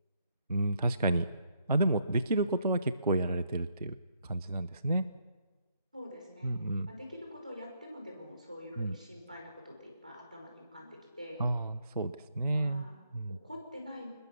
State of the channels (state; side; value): inverted; both; correlation -0.73